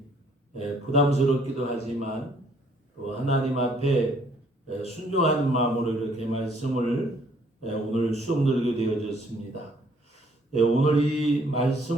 부담스럽기도 하지만 또 하나님 앞에 순종하는 마음으로 이렇게 말씀을 오늘 수업 들게 되어졌습니다. 오늘 이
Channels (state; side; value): normal; both; correlation 0.63